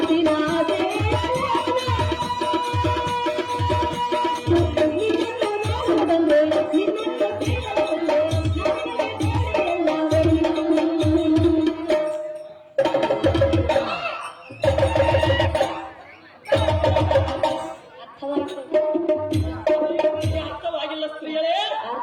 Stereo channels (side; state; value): both; identical; correlation 1.00